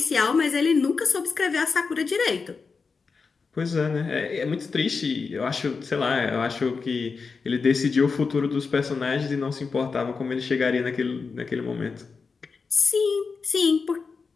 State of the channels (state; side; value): quieter; right; 4.9 dB